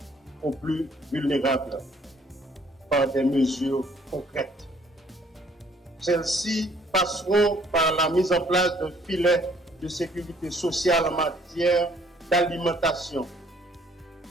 aux plus vulnérables par des mesures concrètes. Celles-ci passeront par la mise en place d'un filet de sécurité sociale en matière d'alimentation,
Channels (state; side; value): normal; both; correlation 0.61